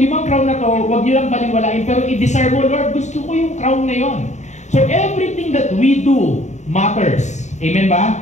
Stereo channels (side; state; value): right; late; 0.34 ms